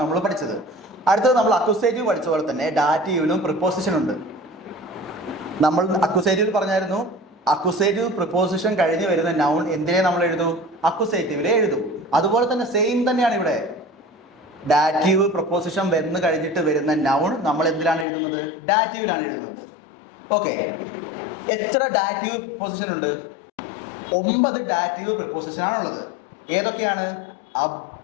നമ്മൾ പഠിച്ചത്. അടുത്തത് നമ്മൾ അക്യൂസേറ്റീവ് പഠിച്ച പോലെ തന്നെ ഡാറ്റീവിലും പ്രിപ്പോസിഷൻ ഉണ്ട്. നമ്മൾ അക്യൂസേറ്റീവ് പറഞ്ഞായിരുന്നു, അക്യൂസേറ്റീവ് പ്രിപ്പോസിഷൻ കഴിഞ്ഞ് വരുന്ന നൗൺ എന്തിനെ നമ്മൾ എഴുതൂ? അക്യൂസേറ്റീവിലെ എഴുതൂ. അതുപോലെ തന്നെ സെയിം തന്നെയാണ് ഇവിടെ. ഡാറ്റീവ് പ്രപ്പോസിഷൻ വന്ന് കഴിഞ്ഞിട്ട് വരുന്ന നൗൺ നമ്മൾ എന്തിലാണ് എഴുതുന്നത്? ഡാറ്റീവിലാണ് എഴുതുന്നത്. ഓക്കെ, എത്ര ഡാറ്റീവ് പ്രിപ്പോസിഷൻ ഉണ്ട്? 9 ഡാറ്റീവ് പ്രിപ്പോസിഷൻ ആണുള്ളത്. ഏതൊക്കെയാണ്? അബ്,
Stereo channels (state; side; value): drops out; right; at 18.1 s